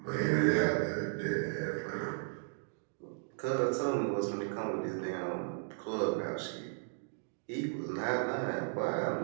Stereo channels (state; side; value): silent; left; digital silence